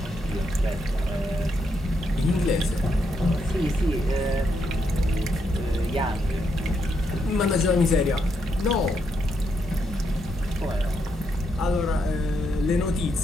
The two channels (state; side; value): normal; both; correlation 0.79